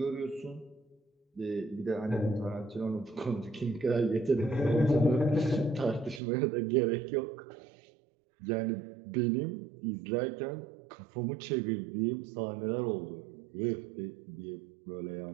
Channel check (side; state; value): left; drops out; at 6.2 s